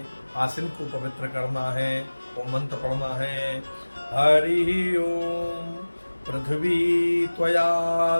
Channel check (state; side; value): inverted; both; correlation -1.00